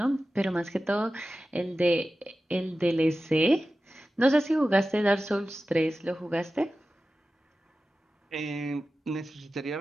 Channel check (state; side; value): normal; both; correlation 0.94